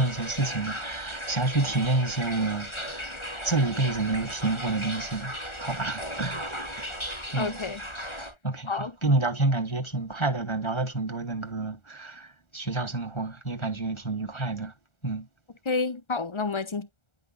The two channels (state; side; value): late; right; 1.4 ms